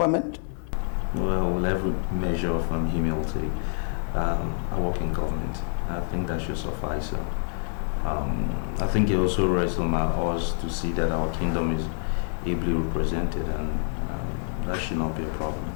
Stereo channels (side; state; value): right; silent; 57 dB below the other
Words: Well, with every measure of humility, I work in government. I think that should suffice. I think it also rests on us to see that our kingdom is ably represented, and that should not be a problem.